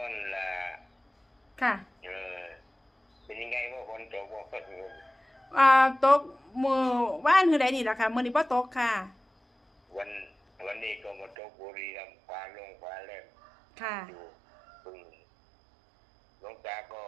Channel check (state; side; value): drops out; left; at 11.4 s